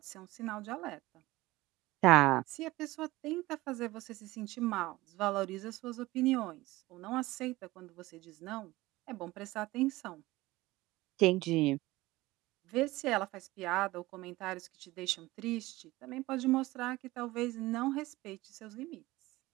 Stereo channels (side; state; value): left; quieter; 19.0 dB